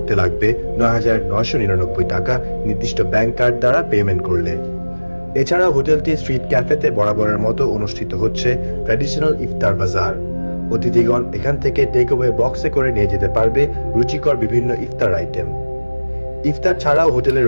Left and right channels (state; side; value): inverted; both; correlation -1.00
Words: লাগবে ৯,৯৯৯ টাকা নির্দিষ্ট ব্যাংক কার্ড দ্বারা পেমেন্ট করলে। এছাড়া হোটেলটি স্ট্রিট ক্যাফেতে বরাবরের মতো অনুষ্ঠিত হচ্ছে ট্র্যাডিশনাল ইফতার বাজার। অতিথিগণ এখান থেকে টেকঅ্যাওয়ে বক্সে করে নিয়ে যেতে পারবে রুচিকর বিভিন্ন ইফতার আইটেম। ইফতার ছাড়াও হোটেলে